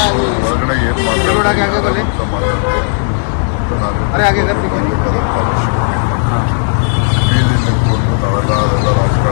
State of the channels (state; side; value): silent; right; digital silence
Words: ಹೊರಗಡೆ ಏನ್ ರೋಡ್ ಆಗಿ ಆगे बोले ಮಾತಾಡಿದೆ अरे आगे कर पीछे नहीं ಬೀದಿ ನಿಂತ್ಕೊಂಡು ನಾವೆಲ್ಲ ಅದೆಲ್ಲ